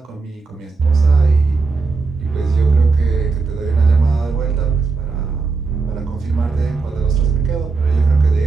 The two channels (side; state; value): left; quieter; 4.3 dB